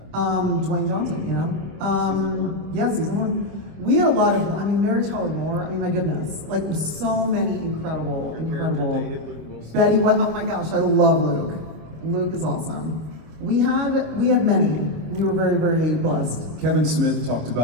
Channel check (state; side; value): late; left; 25 ms